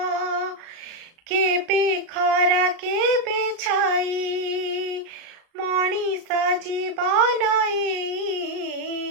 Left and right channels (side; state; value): left; late; 35 ms